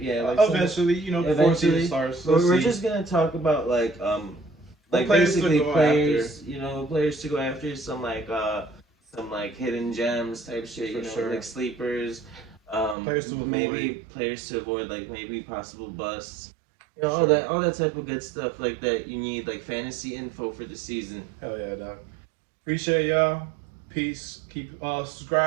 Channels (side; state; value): left; drops out; at 13.0 s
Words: eventually, you know, before season starts. We're just gonna talk about like basically players, you know, players to go after, some like hidden gems type shit, you know, like sleepers, players to avoid. Maybe players to avoid, like maybe possible busts. You know, all that type of good stuff like that you need, like fantasy info for the season. Hell yeah, dog. Appreciate y'all. Peace. Keep